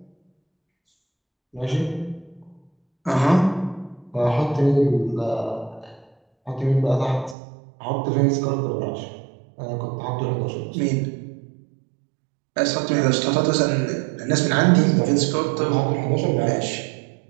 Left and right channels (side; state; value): left; drops out; at 7.4 s